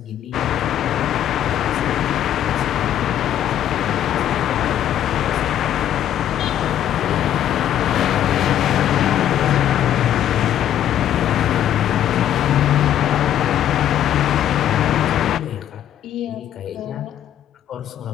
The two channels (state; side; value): quieter; right; 11.0 dB